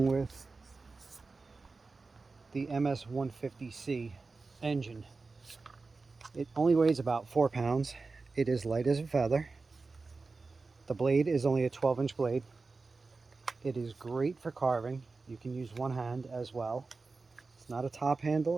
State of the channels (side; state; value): left; quieter; 4.0 dB